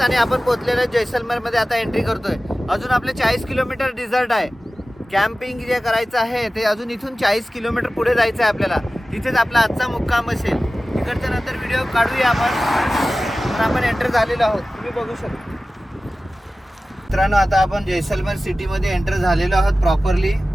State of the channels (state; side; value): normal; both; correlation 0.96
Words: आणि आपण पोहोचलेलो आहे जैसलमेर मध्ये. आता एंट्री करतोय. अजून आपले 40 किलोमीटर डिझर्ट आहे. कॅम्पिंग जे करायचं आहे ते अजून इथून 40 किलोमीटर पुढे जायचं आहे आपल्याला. तिथेच आपला आजचा मुक्काम असेल. तिकडच्या नंतर व्हिडिओ काढूया आपण. तर आपण एंटर झालेलो आहोत, तुम्ही बघू शकता. मित्रांनो आता आपण जैसलमेर सिटीमध्ये एंटर झालेलो आहोत प्रॉपरली.